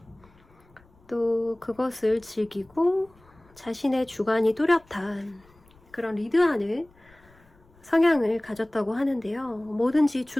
또 그것을 즐기고 자신의 주관이 뚜렷한 그런 리드하는 성향을 가졌다고 하는데요. 뭐든지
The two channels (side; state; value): left; noise; rumble, 29 dB below the sound